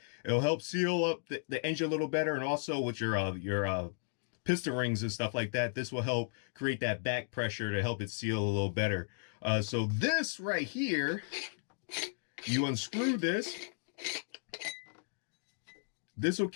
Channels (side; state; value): right; silent; digital silence